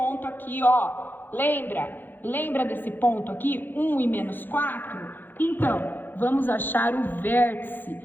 aqui, ó, lembra desse ponto aqui? 1 e menos 4? Então, vamos achar o vértice,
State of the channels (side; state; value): right; late; 0.092 ms